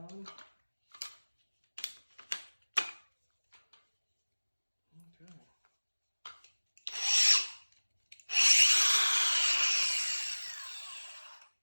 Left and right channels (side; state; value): both; inverted; correlation -1.00